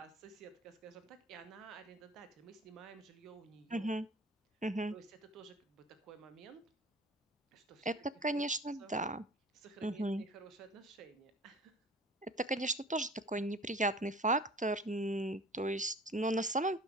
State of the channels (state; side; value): normal; both; correlation 0.44